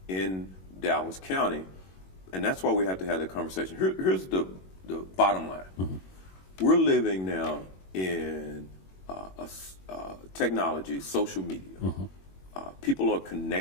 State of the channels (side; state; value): right; late; 21 ms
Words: in Dallas County. And that's why we have to have that conversation. Here's the bottom line. We're living now in technology, social media. people are